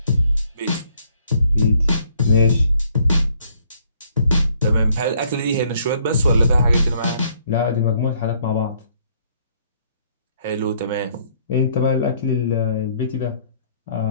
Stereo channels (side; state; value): both; inverted; correlation -0.65